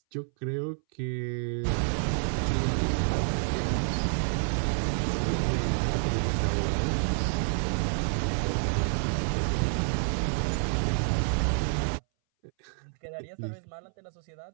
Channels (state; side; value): silent; left; 59 dB below the other